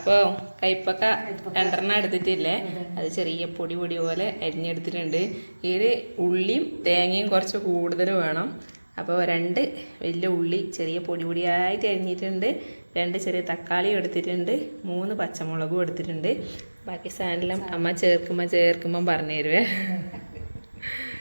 കൈപ്പക്ക 2 എടുത്തിട്ടില്ലേ, അത് ചെറിയ പൊടി പൊടി പോലെ അരിഞ്ഞെടുത്തിട്ടുണ്ട്. ഇതിൽ ഉള്ളിയും തേങ്ങയും കുറച്ച് കൂടുതൽ വേണം. അപ്പോൾ 2 വലിയ ഉള്ളി ചെറിയ പൊടി പൊടിയായിട്ട് അരിഞ്ഞിട്ടുണ്ട്. 2 ചെറിയ തക്കാളി എടുത്തിട്ടുണ്ട്. 3 പച്ചമുളകും എടുത്തിട്ടുണ്ട്. ബാക്കി സാധനം അമ്മ ചേർക്കുമ്പോൾ പറഞ്ഞു തരുവേ.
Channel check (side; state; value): both; inverted; correlation -1.00